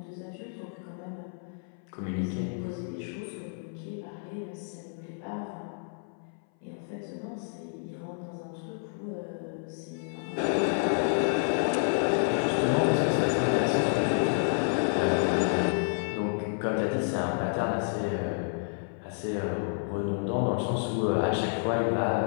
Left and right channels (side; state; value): right; silent; 58 dB below the other